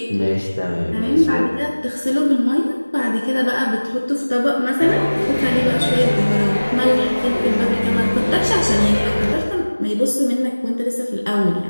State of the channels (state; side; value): inverted; both; correlation -1.00